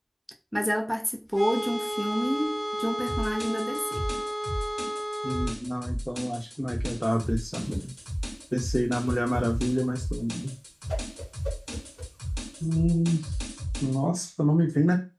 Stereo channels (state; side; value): identical; both; correlation 1.00